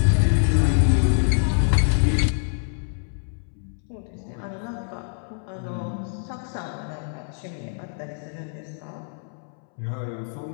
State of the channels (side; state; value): right; silent; 62 dB below the other